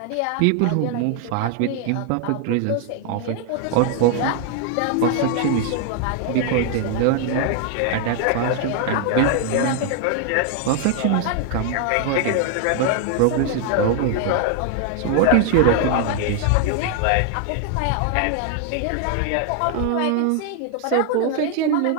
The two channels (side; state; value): both; different; correlation 0.00